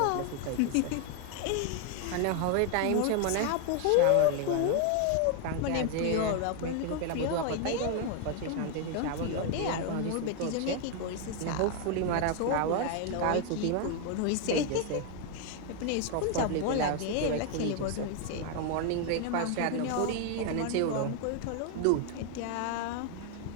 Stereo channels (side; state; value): both; different; correlation 0.01